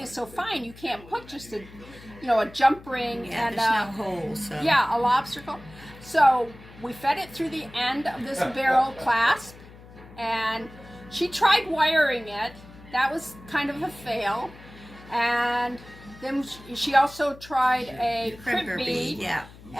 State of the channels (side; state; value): left; noise; hum, 20 dB below the sound